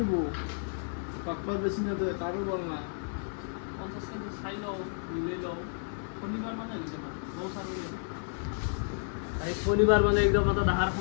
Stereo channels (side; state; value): right; silent; 57 dB below the other